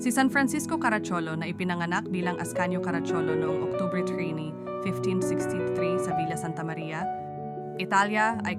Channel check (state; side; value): identical; both; correlation 1.00